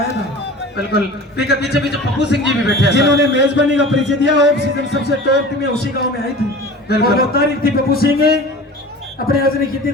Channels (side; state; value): both; normal; correlation 0.38